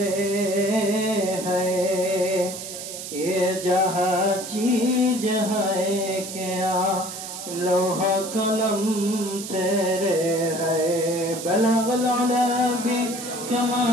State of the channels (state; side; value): noise; right; hiss, 9 dB below the sound